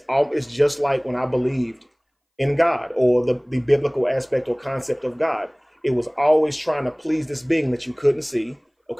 just like when I believed in God, or the biblical aspect or concept of God. It was always trying to please this being that you couldn't see.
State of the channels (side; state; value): both; identical; correlation 1.00